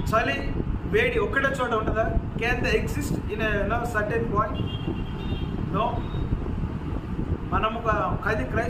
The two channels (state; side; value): identical; both; correlation 1.00